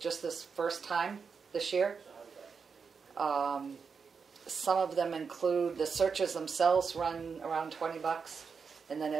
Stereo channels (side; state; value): left; quieter; 5.7 dB